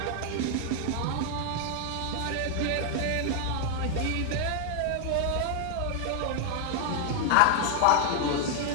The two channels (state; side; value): different; both; correlation 0.00